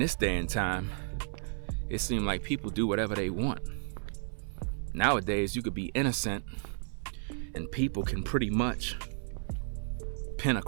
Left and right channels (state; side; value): silent; left; 56 dB below the other